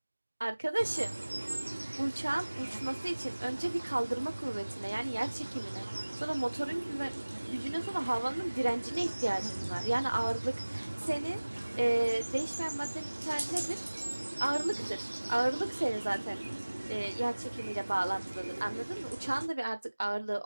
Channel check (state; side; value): inverted; both; correlation -1.00